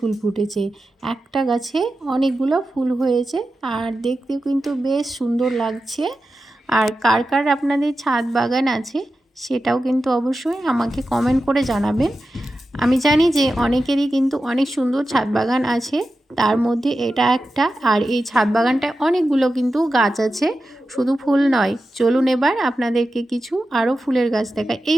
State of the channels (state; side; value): normal; both; correlation 0.92